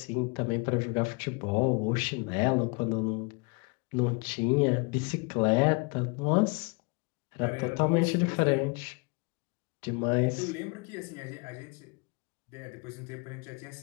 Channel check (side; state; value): right; quieter; 31.0 dB